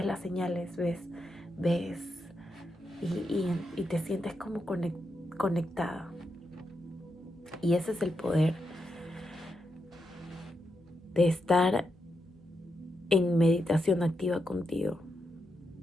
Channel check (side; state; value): right; noise; hum, 28 dB below the sound